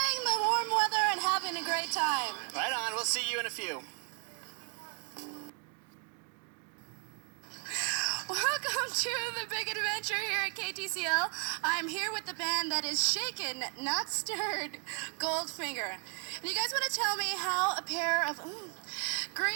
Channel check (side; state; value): left; quieter; 38.0 dB